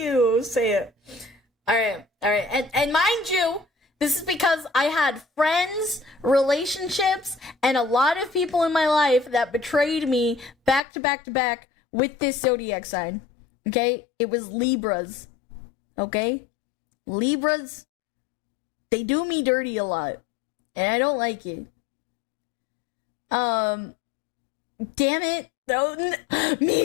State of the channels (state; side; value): drops out; right; at 10.8 s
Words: Say it. Alright. And mind you, this is because I had friends, relationships, and a lot of people in my life that betrayed me back to back to back with this zodiac sign. Okay? It was Libras. Okay? Libras, they do me dirty a lot. And I don't like it. Damn it. No,